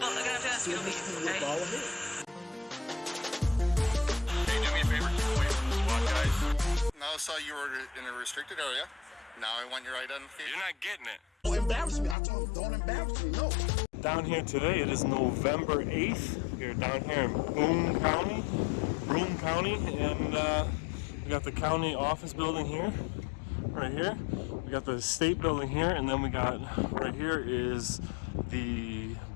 I got to ask you, okay? Bald head. Hey, do me a favor, keep away from the SWAT guys. Now I saw you were in a restricted area. Now I want your identification. You're not getting it. Don't embarrass me. I told him, don't embarrass me, no. Down here today, it is November 8th. We're down here in Broome County, and we got the county office building here, right here. We got the state building here, and then we got, right here is the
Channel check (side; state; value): right; drops out; at 12.2 s